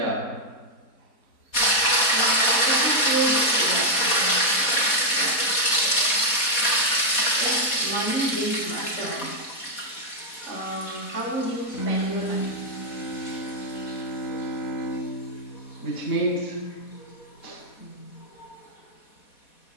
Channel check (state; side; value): late; right; 4.1 ms